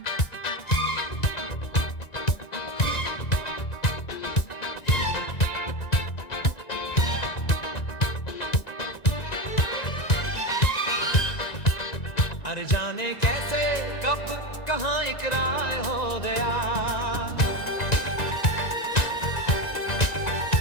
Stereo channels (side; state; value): right; late; 1.9 ms